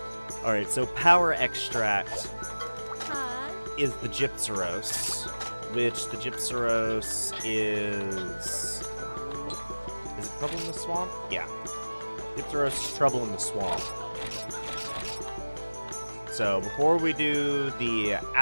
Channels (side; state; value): both; inverted; correlation -1.00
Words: Alright, so power extract is the Gypsaros, which the Gypsaros is it Trouble in the Swamp? Yeah. Gypsaros is Trouble in the Swamp. So, before we do the